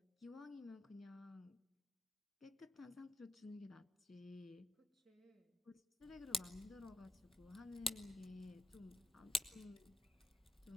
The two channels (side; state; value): both; normal; correlation 0.86